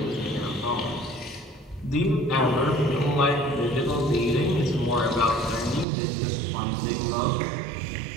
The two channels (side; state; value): left; drops out; at 5.9 s